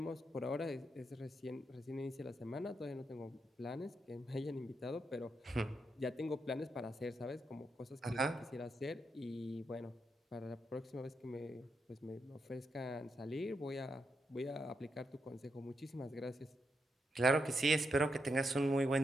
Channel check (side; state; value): both; normal; correlation 0.82